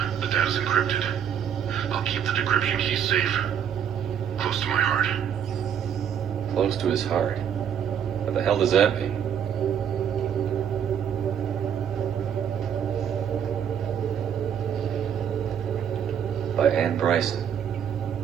The data's encrypted. I'll keep the decryption key safe. Close to my heart. Close close to his heart. What the hell does that mean? By Anne Bryson,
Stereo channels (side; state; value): left; quieter; 8.6 dB